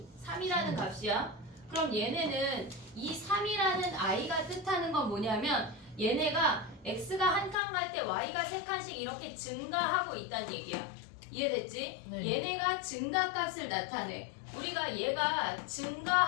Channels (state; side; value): drops out; right; at 7.6 s